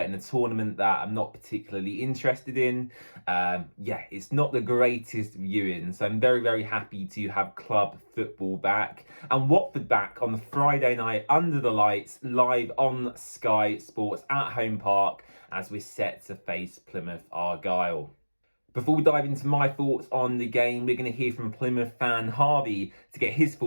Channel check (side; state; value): both; inverted; correlation -1.00